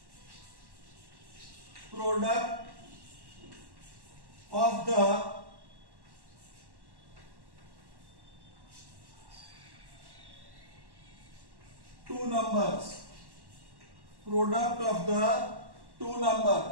product of the two numbers. Product of the two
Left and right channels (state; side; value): late; left; 1.1 ms